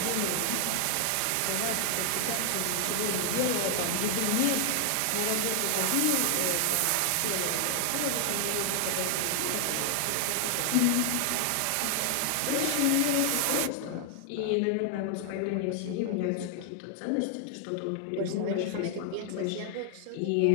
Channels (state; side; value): different; both; correlation 0.00